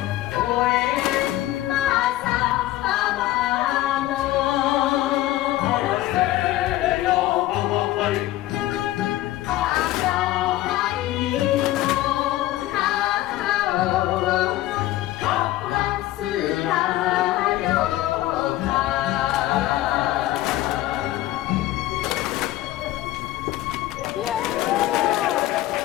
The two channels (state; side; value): quieter; right; 15.4 dB